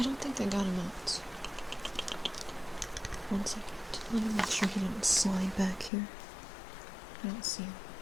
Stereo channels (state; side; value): drops out; right; at 5.9 s